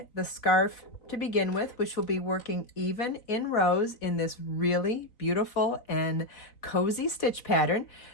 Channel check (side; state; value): right; late; 3.9 ms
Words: the scarf to begin with, which will be working even in rows in this really beautiful and cozy stitch pattern.